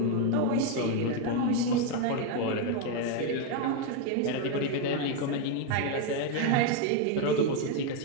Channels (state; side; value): different; both; correlation 0.01